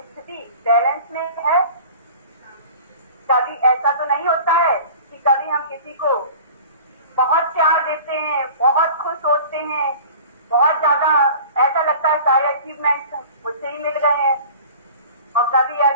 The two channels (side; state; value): both; inverted; correlation -0.41